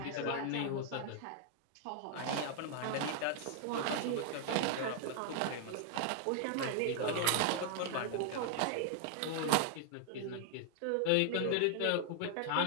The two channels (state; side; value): different; both; correlation 0.00